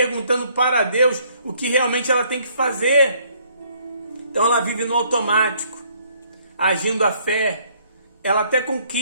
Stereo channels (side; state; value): both; inverted; correlation -0.64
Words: para Deus o que realmente ela tem que fazer. Então ela vive no automático, agindo a fé. Ela até